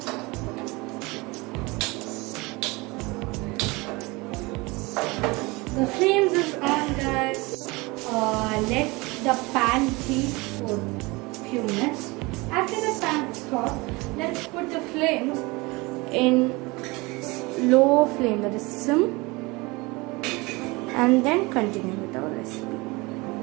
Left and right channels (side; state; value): left; quieter; 24.3 dB